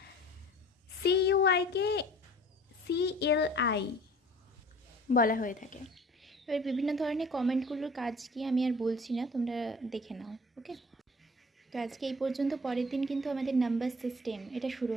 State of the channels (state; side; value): normal; both; correlation 0.47